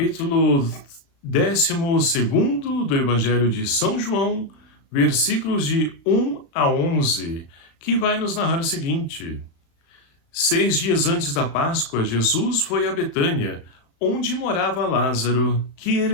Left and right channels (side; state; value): right; late; 36 ms